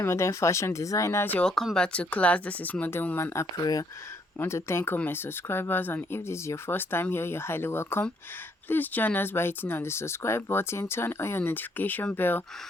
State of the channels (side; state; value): both; normal; correlation 0.68